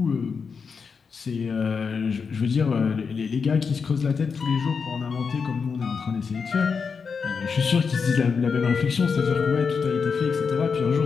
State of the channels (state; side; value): quieter; right; 5.6 dB